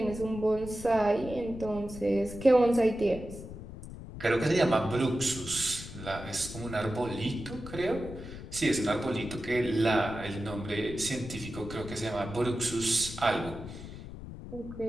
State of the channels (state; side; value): noise; left; rumble, 12 dB below the sound